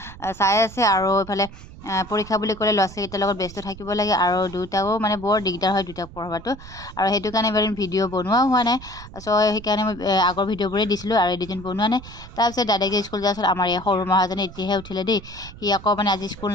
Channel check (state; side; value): noise; right; rumble, 16 dB below the sound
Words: চাই আছে আৰু এইফালে পৰীক্ষা বুলি ক'লে ল'ৰা ছোৱালীকেইটাৰ লগত ব্যস্ত থাকিব লাগে আৰু দুয়োটাও মানে বৰ দিগদাৰ হয় দুয়োটাক পঢ়োৱাটো। আৰু সেইটো কাৰণে এবাৰ ভিডিঅ' বনোৱাও হোৱা নাই। চ' সেইকাৰণে মই আগৰ ভিডিঅ'বোৰেই দিছিলোঁ আৰু এডিটিং বনোৱা নাই। তাৰপিছত দাদাকে স্কুল যোৱাৰ পাছত আমাৰ এই সৰু মহাজনে এতিয়াহে উঠিলে দেই। সি আকৌ মানে আজি স্কুল